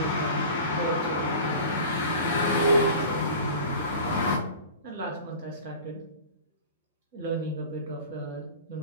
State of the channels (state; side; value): inverted; both; correlation -0.38